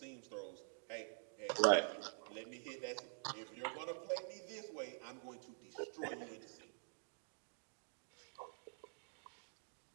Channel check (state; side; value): silent; left; digital silence